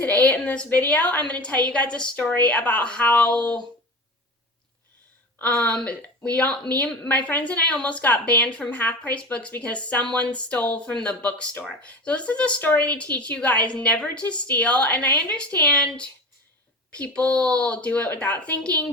in this video, I'm going to tell you guys a story about how me and my friends and I almost got banned from Half Price Books because someone stole from the bookstore. So this is a story to teach you guys never to steal, and I understand people do it without thinking,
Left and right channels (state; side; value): normal; both; correlation 0.31